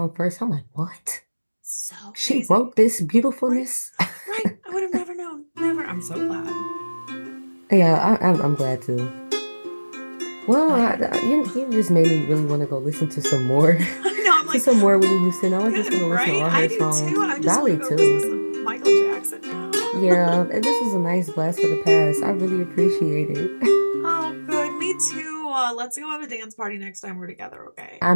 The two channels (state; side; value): inverted; both; correlation -1.00